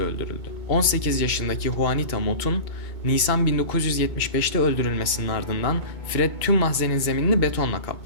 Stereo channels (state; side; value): late; right; 2.2 ms